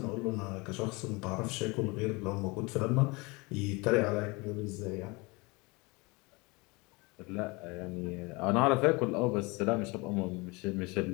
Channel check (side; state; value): right; quieter; 26.1 dB